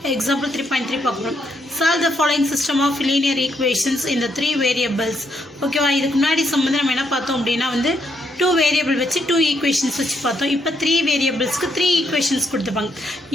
example 3.3 பார்க்கணும். Solve the following system of linear equations in the three variables. ஓகேவா, இதுக்கு முன்னாடி சம்பந்தம் நம்ம என்ன பார்த்தோம் அப்படின்னா வந்து 2 வேரியபிள் வச்சு 2 ஈக்குவேஷன்ஸ் வச்சு பார்த்தோம். இப்போ 3 வேரியபிள்ஸ்க்கு 3 ஈக்குவேஷன்ஸ் கொடுத்துருப்பாங்க.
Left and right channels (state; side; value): normal; both; correlation 0.75